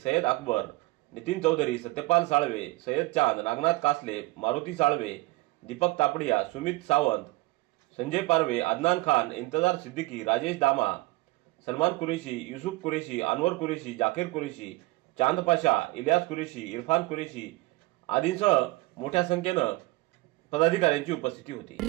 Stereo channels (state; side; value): quieter; left; 21.2 dB